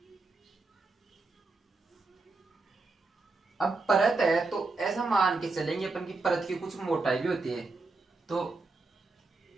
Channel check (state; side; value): quieter; left; 3.7 dB